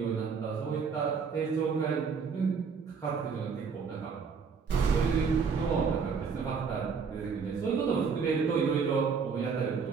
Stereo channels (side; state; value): left; quieter; 5.7 dB